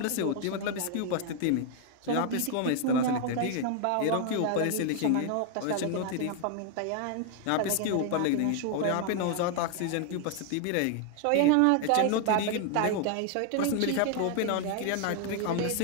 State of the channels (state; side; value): different; both; correlation 0.00